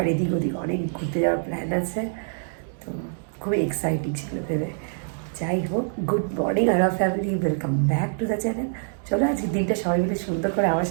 এদিক ওদিক অনেক ঘুরতে যাওয়ার প্ল্যান আছে। তো খুবই এক্সাইটিং ছিল ভেবে। যাই হোক, good morning our family, welcome back to the channel. চলো আজকে দিনটা সবাই মিলে সুন্দর করে আমার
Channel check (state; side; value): silent; left; digital silence